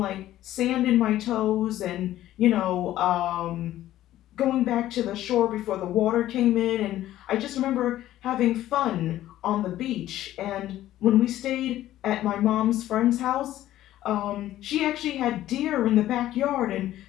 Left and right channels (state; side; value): quieter; right; 13.8 dB